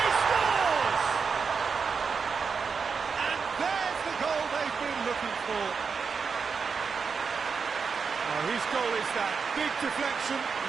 He scores! And there's the goal they've been looking for. Oh, whose goal is that? Big deflection.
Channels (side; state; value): left; quieter; 5.5 dB